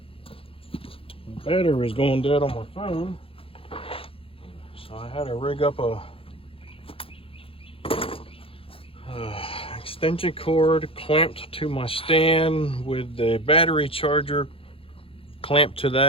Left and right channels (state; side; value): late; right; 0.27 ms